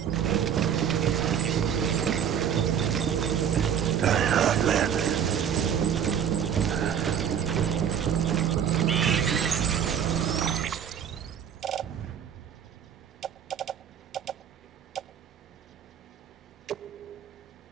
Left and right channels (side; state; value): left; quieter; 8.5 dB